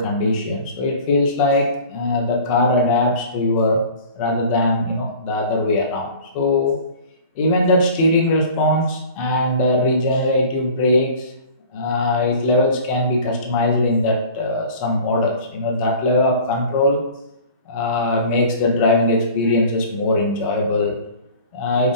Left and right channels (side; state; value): both; inverted; correlation -0.44